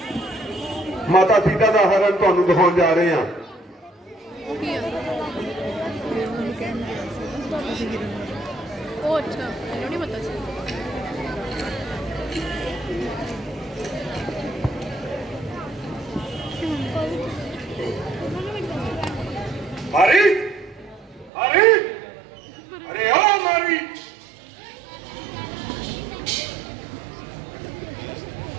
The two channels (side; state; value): left; drops out; at 21.3 s